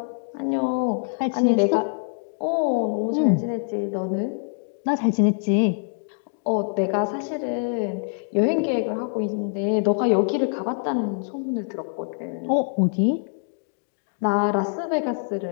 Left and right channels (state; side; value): silent; right; digital silence